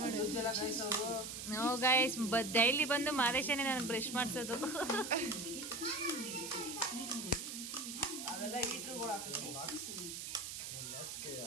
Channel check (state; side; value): noise; right; hiss, 7 dB below the sound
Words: no guys, daily ಬಂದು ಮಾದೇಶನೇ ನಾನು ಬ್ರಷ್ ಮಾಡಿಸೋದು.